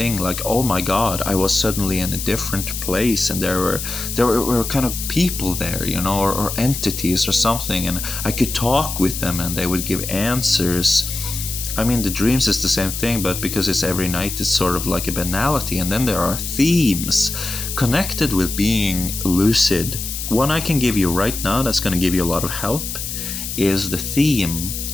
Like, oh my God, I was suddenly in a different place, and there were kind of people there, you know, or entities or something, and I could talk with them, and they would give answers. I mean, the dreams is the same thing, but because it's every night, it's sort of like a banality. And then there are themes connected with being lucid. One I can give you right now that's going to give you a lot of help is the theme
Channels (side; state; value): left; noise; hiss, 6 dB below the sound